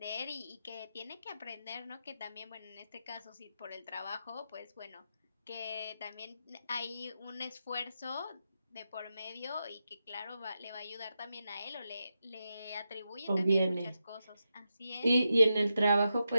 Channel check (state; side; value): inverted; both; correlation -0.88